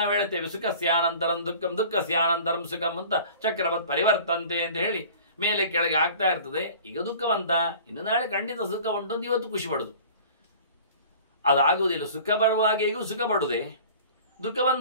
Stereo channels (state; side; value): inverted; both; correlation -0.44